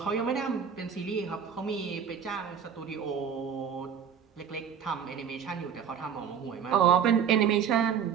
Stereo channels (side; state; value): left; quieter; 7.6 dB